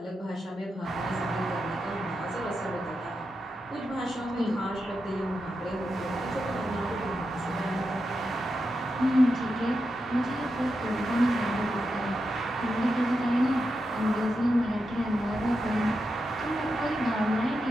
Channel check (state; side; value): normal; both; correlation 0.87